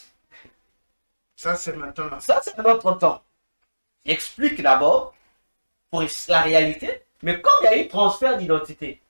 Ça, c'est maintenant. Ça, c'est notre temps. J'explique d'abord pour la réalité, mais comme il y a eu transfert d'identité,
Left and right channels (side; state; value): both; inverted; correlation -1.00